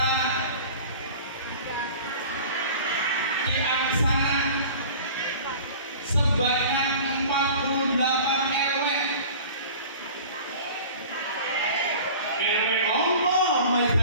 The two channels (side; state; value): both; inverted; correlation -0.41